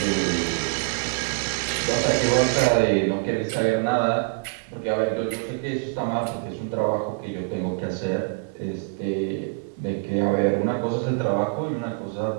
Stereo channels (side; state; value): left; quieter; 39.3 dB